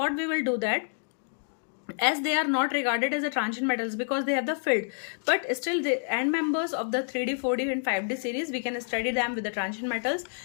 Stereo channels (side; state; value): right; silent; digital silence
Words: we will do that, as they are not regarded as a transition metals because they have the field, but still the end members of the 3D, 4D and 5D series, we can study them with the transition metals.